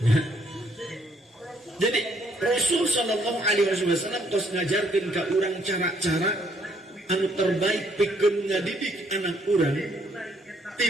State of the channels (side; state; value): both; normal; correlation 0.68